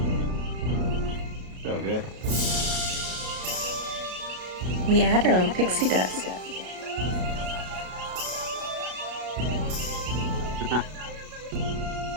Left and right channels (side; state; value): left; late; 33 ms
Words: So good. We add our own pixie dust.